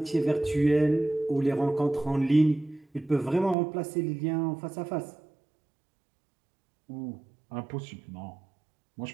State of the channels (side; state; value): left; drops out; at 3.6 s